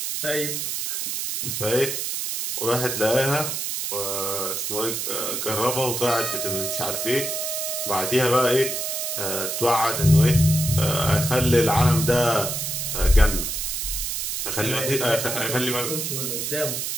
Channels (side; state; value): right; noise; hiss, 2 dB below the sound